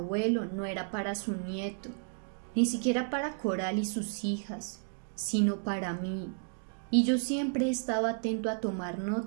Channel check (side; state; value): left; silent; 56 dB below the other